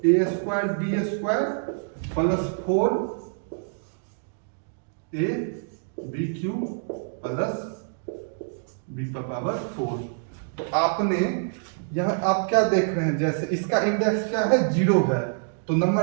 square b square plus 4 a b cube plus b का पावर 4। तो आपने यहाँ आप क्या देख रहे हैं? जैसे इसका इंडेक्स क्या है? 0 है, तो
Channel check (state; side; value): silent; left; digital silence